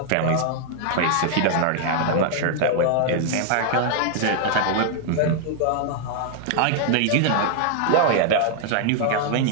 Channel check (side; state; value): both; different; correlation 0.00